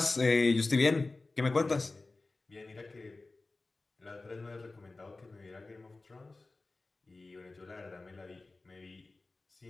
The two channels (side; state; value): right; quieter; 3.4 dB